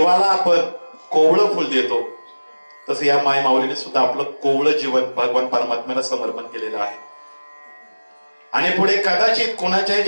आपण कोवळं फुल देतो, तसं या माय माऊलीने सुद्धा आपलं कोवळं जीवन भगवान परमात्म्याला समर्पण केलेलं आहे. आणि पुढे कदाचित कोणाच्याही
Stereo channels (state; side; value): inverted; both; correlation -1.00